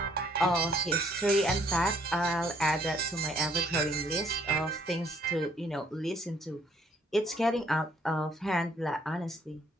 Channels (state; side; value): normal; both; correlation 0.65